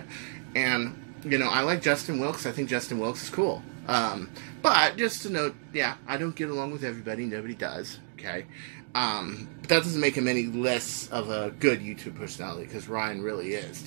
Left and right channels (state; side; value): silent; left; 58 dB below the other